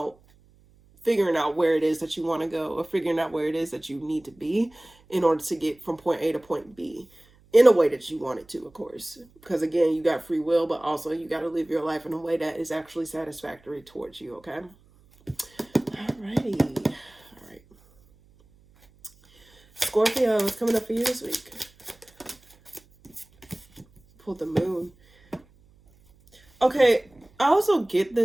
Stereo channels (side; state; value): right; noise; hum, 30 dB below the sound